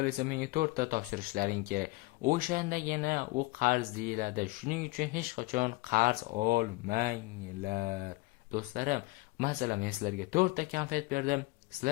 esa menga 4 ta topshirishlaring kerak. O'shandagina u qarz deyiladi. Shuning uchun hech qachon qarz olmanglar. Do'stlarim, masalan, men sizlarga 4 ta konfet berdim,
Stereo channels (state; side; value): quieter; right; 22.4 dB